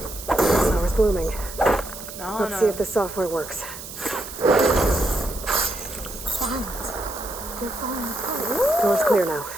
blooming. 然后 Let's 呢 see if the software works. Vines. They're falling apart. Door's clear now.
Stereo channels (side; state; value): right; noise; hiss, 12 dB below the sound